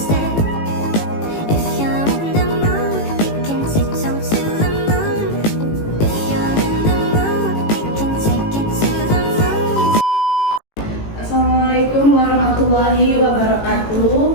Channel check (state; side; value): late; right; 18 ms